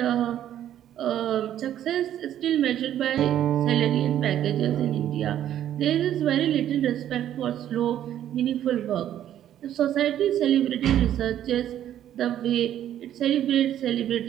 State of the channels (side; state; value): left; quieter; 11.2 dB